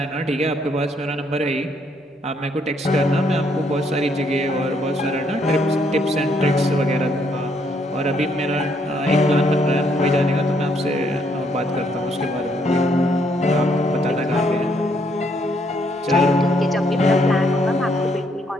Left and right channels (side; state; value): both; normal; correlation 0.71